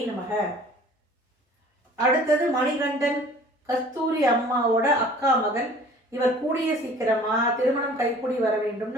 நமக. அடுத்தது மணிகண்டன். கஸ்தூரி அம்மாவோட அக்கா மகன். இவர் கூடிய சீக்கிரமா திருமணம் கைக்கூடி வர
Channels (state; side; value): normal; both; correlation 0.49